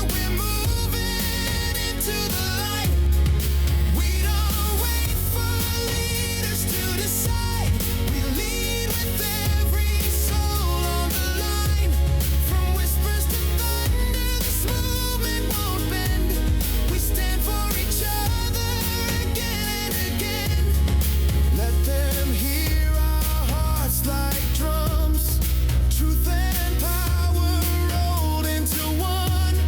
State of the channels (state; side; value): identical; both; correlation 1.00